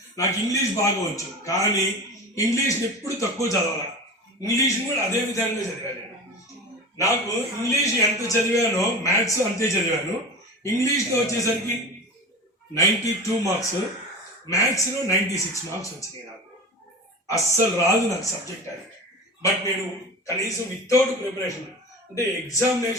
నాకు ఇంగ్లీష్ బాగా వచ్చు, కానీ ఇంగ్లీష్ని ఎప్పుడు తక్కువ చదవాలి. ఇంగ్లీష్ని కూడా అదే విధంగా చదివాను. నాకు ఇంగ్లీష్ ఎంత చదివానో మ్యాథ్స్ అంతే చదివాను. ఇంగ్లీష్లో వచ్చేసరికి 92 మార్క్స్, మ్యాథ్స్లో 96 మార్క్స్ వచ్చినాయి. నాకు అస్సలు రాదు నాకు సబ్జెక్ట్ అది. బట్ నేను కనీసం వితౌట్ ప్రిపరేషన్ అంటే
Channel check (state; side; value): normal; both; correlation 0.31